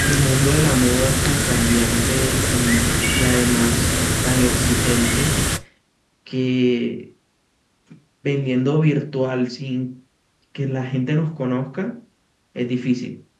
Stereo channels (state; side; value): identical; both; correlation 1.00